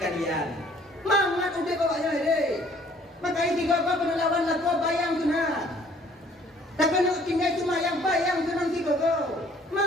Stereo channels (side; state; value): both; normal; correlation 0.58